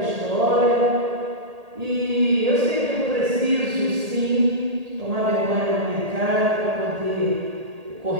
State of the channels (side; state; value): left; late; 1.8 ms